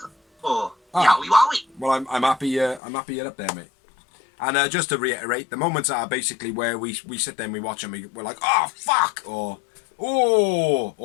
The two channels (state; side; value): drops out; right; at 2.8 s